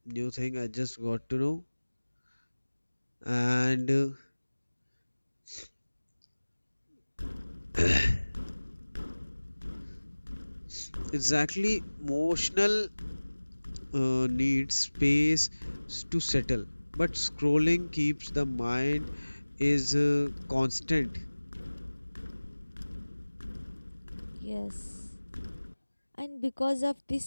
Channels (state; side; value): inverted; both; correlation -1.00